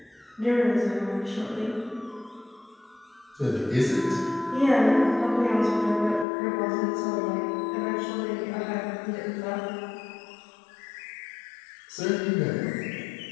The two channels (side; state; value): right; drops out; at 6.2 s